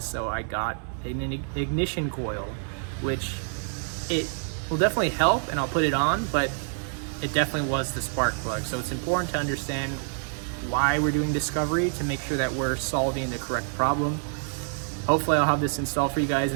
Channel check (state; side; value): silent; left; 60 dB below the other